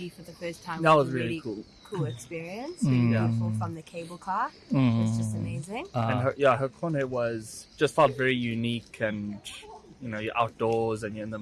for the first time That was was a really really cool experience. Really beautiful from the cable car. It's just amazing. And Hakone felt very unique, and you're outdoors and you're in the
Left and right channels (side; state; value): both; identical; correlation 1.00